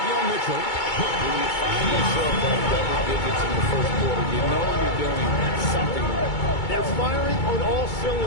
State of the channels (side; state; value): right; late; 2.2 ms